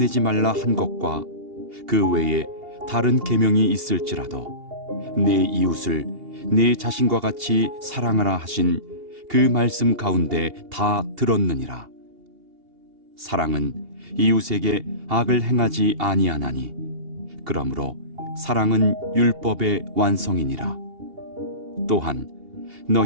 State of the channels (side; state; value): left; late; 2.8 ms